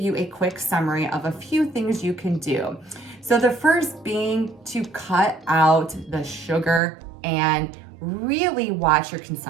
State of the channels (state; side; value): drops out; left; at 6.8 s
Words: a quick summary of a few things you can do. So the first being to cut out the sugar and really watch your